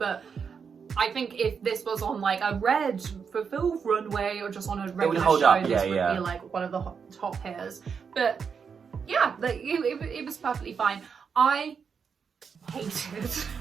I think if this was on like a red fulfilled runway or just on a regular show, this would be like one of the top hairs. But yeah, like, it was perfectly fine. I hated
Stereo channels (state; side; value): quieter; left; 6.3 dB